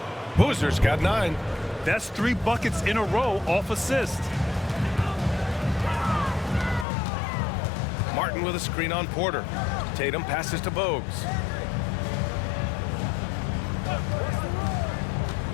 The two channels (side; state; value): right; drops out; at 6.9 s